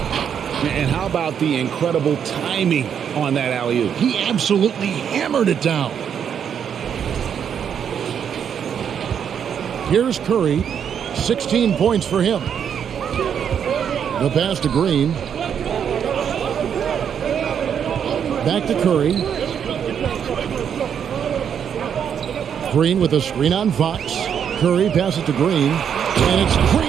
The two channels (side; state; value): left; quieter; 8.1 dB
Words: And how about the incredible timing on that alley-oop? He absolutely hammered it down. Here's Curry, 16 points for him. The pass to Green. Back to Curry. Green with a screen on Fox. Curry passes to Green, and it's